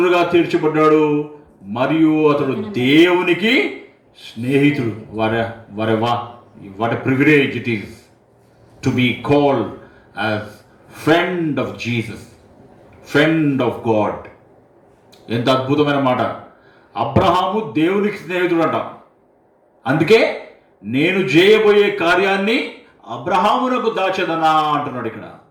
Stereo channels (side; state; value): both; identical; correlation 1.00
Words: తీర్చబడ్డాడు మరియు అతడు దేవునికి స్నేహితుడు. What privilege it is to be called as friend of Jesus, friend of God. ఎంత అద్భుతమైన మాట. అబ్రహాము దేవునికి స్నేహితుడు అంట. అందుకే నేను చేయబోయే కార్యాన్ని అబ్రహామునకు దాచదనా అంటున్నాడు ఇక్కడ.